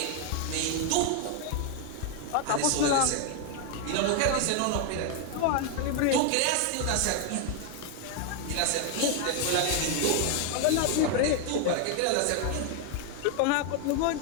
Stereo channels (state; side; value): different; both; correlation 0.01